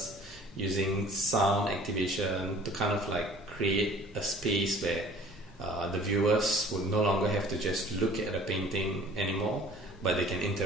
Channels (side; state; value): both; normal; correlation 0.49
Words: using sound activation to kind of like create a space where the viewers would no longer have to just look at a painting anymore, but they can